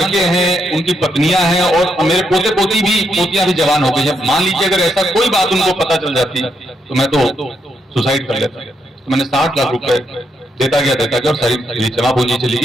हैं, उनकी पत्नियां हैं, और मेरे पोते पोतियां भी जवान हो गई हैं। मान लीजिए अगर ऐसा कोई बात उनको पता चल जाती तो मैं तो सुसाइड कर लेता। तो मैंने 60 लाख रुपए देता गया और सारी जमा पूंजी चली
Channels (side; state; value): both; normal; correlation 0.79